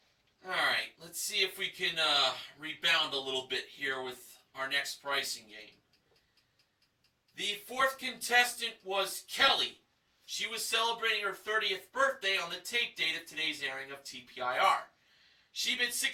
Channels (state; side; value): identical; both; correlation 1.00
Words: Alright, let's see if we can rebound a little bit here with our next pricing game. The fourth contestant was Kelly. She was celebrating her 30th birthday on the tape date of today's airing of TPIR. She bid